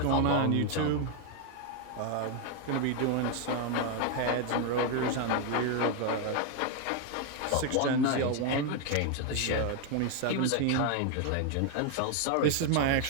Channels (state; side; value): different; both; correlation 0.01